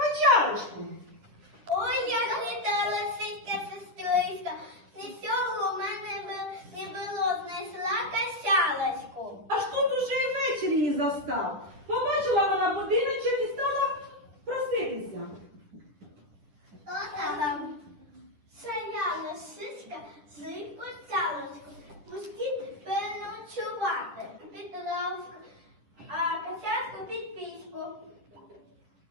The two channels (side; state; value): left; late; 9.9 ms